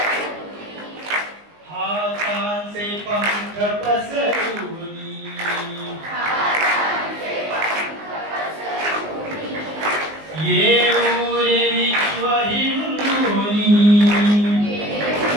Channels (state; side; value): late; left; 19 ms